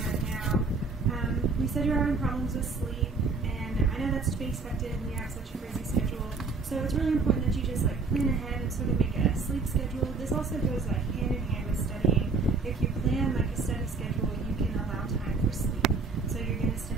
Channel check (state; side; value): quieter; left; 4.3 dB